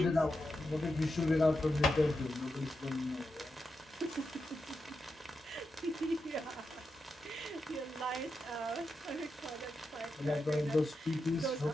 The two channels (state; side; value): normal; both; correlation 0.88